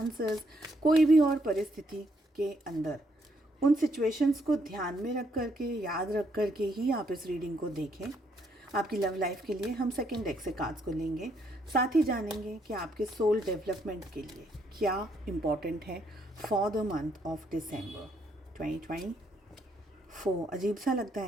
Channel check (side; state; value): both; normal; correlation 0.73